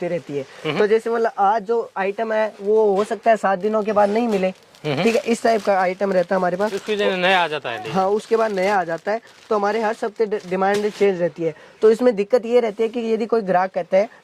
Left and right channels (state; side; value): identical; both; correlation 1.00